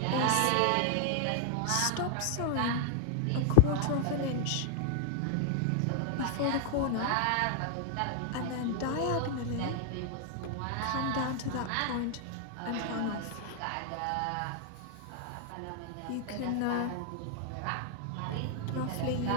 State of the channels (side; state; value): both; different; correlation 0.00